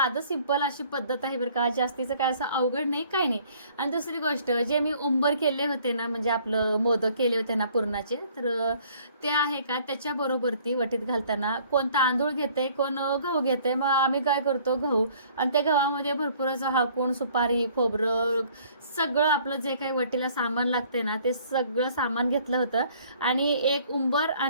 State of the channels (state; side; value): inverted; both; correlation -0.57